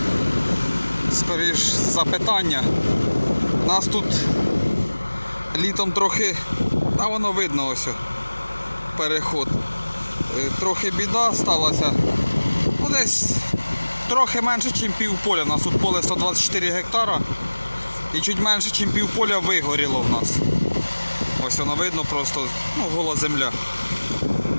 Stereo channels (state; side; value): inverted; both; correlation -1.00